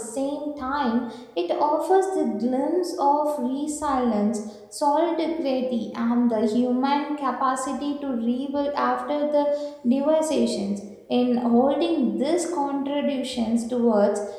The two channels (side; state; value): both; identical; correlation 1.00